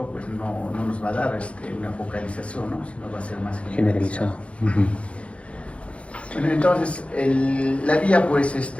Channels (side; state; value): right; late; 0.061 ms